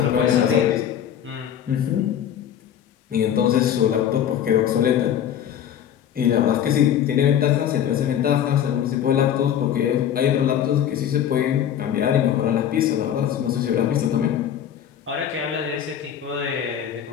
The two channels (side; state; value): right; quieter; 9.7 dB